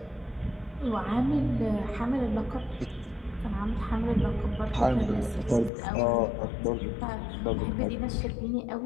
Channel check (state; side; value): drops out; right; at 5.7 s